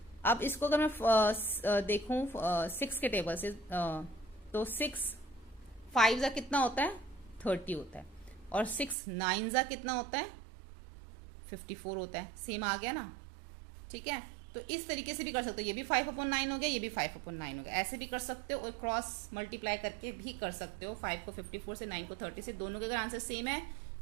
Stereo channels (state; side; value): drops out; left; at 9.0 s